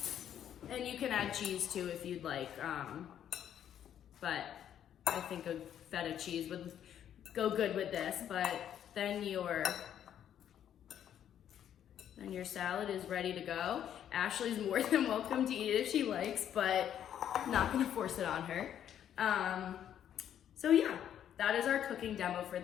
And you can add cheese too if you'd like, but I think a feta cheese would go good with this. But then your salad is ready to go. Ashley's more than welcome to eat it if she likes, but not gonna force it on her. So yeah, that is our cooking demo for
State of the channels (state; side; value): quieter; right; 10.0 dB